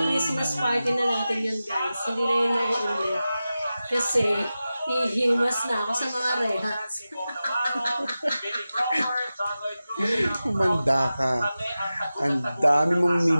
Christmas party na natin yun, guys. Hindi na yun nag-ulit. Kasi, hihimas na ako sa mga rehas. Umanda ka. Ang dami mong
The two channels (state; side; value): inverted; both; correlation -0.94